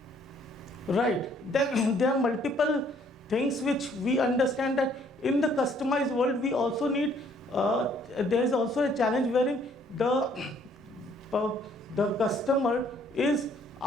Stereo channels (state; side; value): normal; both; correlation 0.63